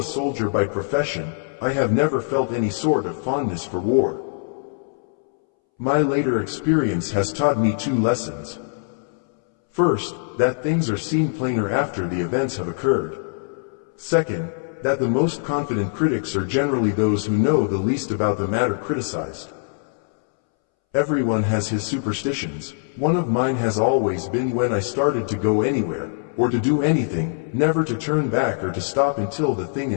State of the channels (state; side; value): silent; right; 64 dB below the other